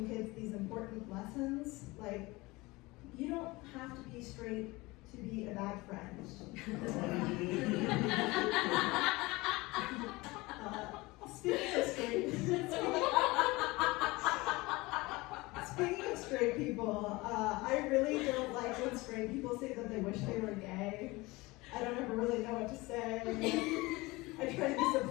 kids these important lessons, like you don't have to be straight to be a bad friend. Speaking of straight people, I really don't like when straight people say that they wish they were gay. I don't ever really know what to say. I try to be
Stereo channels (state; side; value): quieter; right; 22.3 dB